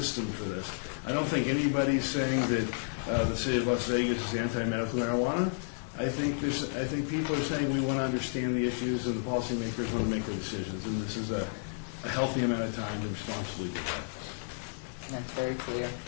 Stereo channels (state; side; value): silent; right; digital silence